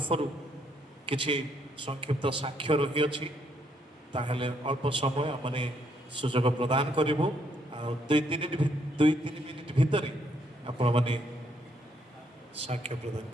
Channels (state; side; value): normal; both; correlation 0.72